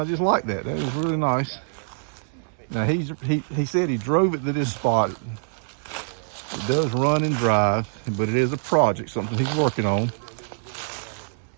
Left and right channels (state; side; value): silent; left; 62 dB below the other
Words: just like that. That is really nice. Now he said he drove it to this spot. It does run and drive, but it is a project, something he's working on.